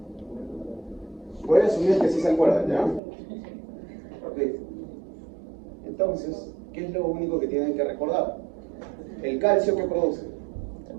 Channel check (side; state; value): left; drops out; at 3.0 s